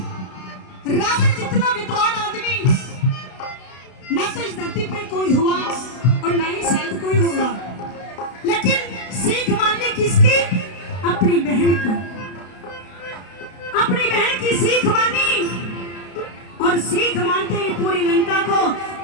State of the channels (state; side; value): late; right; 32 ms